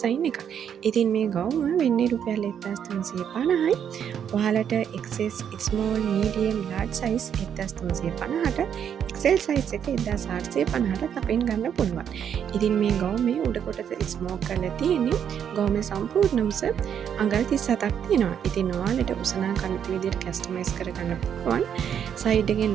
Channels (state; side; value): quieter; left; 8.5 dB